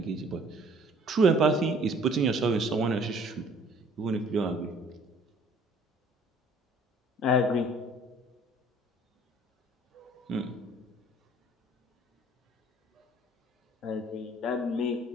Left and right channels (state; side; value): normal; both; correlation 0.55